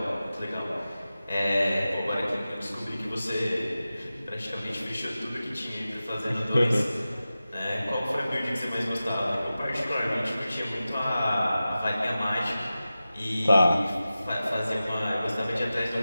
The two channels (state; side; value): inverted; both; correlation -0.95